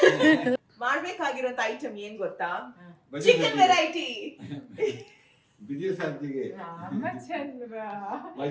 ಮಾಡ್ಬೇಕಾಗಿರೋಂತ ಐಟಮ್ ಏನ್ ಗೊತ್ತಾ? Chicken variety. ಬಿಜಿ ಸಂತಿಗೆ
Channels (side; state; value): both; identical; correlation 1.00